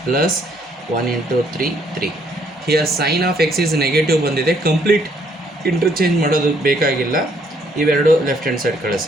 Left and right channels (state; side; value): normal; both; correlation 0.67